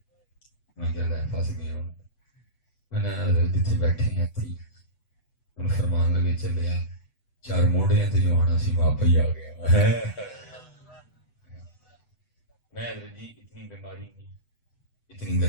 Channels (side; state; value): right; late; 8.0 ms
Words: میں کہہ لائے پھنس گیا ہوں، میں نے حضرت جتنے بیٹھے ہیں تھی ان فرمان لگے چلے آ 4 موڑے ہیں تو جو آنا سی وہاں پہ ہی آ گیا۔ میں حضرت جی اتنی بیماری میں، اتنی